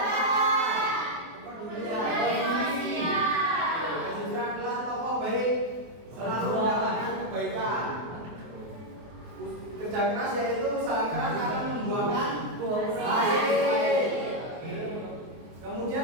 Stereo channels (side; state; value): left; late; 24 ms